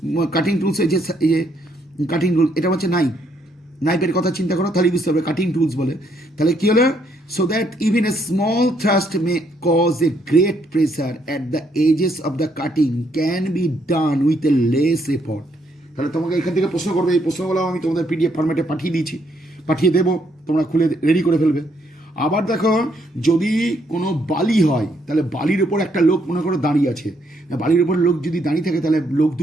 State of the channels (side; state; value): both; normal; correlation 0.72